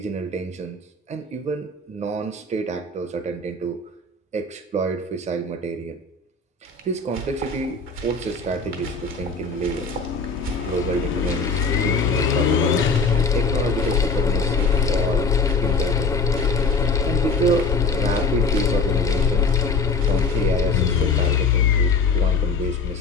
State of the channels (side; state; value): right; quieter; 3.8 dB